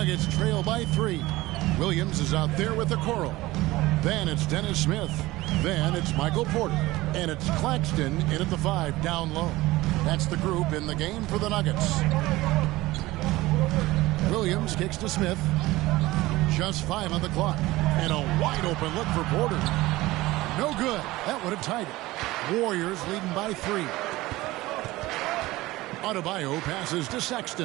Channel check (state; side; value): quieter; left; 18.7 dB